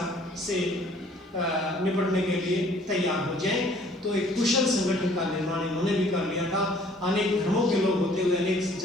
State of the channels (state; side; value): normal; both; correlation 0.57